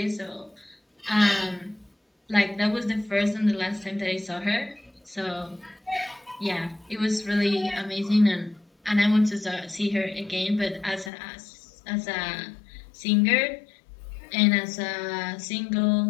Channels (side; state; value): right; drops out; at 11.1 s